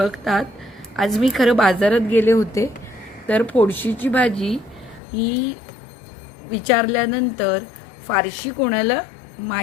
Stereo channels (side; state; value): right; drops out; at 5.0 s